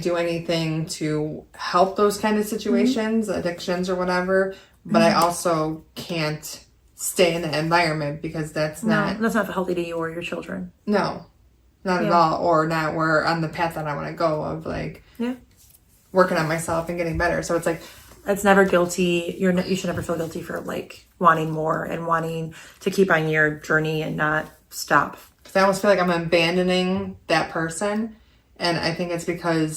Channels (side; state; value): both; identical; correlation 1.00